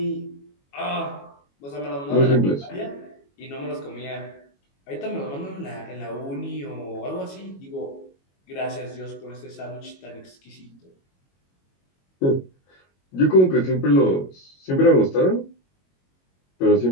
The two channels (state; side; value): late; right; 22 ms